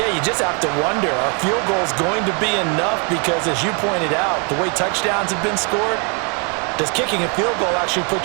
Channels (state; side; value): quieter; left; 35.7 dB